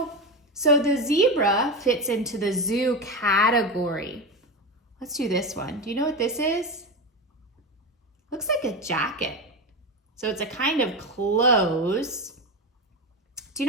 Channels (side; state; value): both; normal; correlation 0.18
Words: So the zebra fits into the zoo category. Let's do this one. Do you know what this is? Looks like a jacket. So it's a kind of clothes. Do